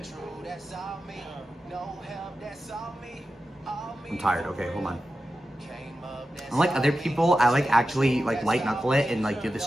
true, that's all me. No help, that's all me. All me. I'm tired. Okay, hold on. Came up, that's Unlike all other me. people, I like actually like light knuckle it and like do the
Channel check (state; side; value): normal; both; correlation 0.92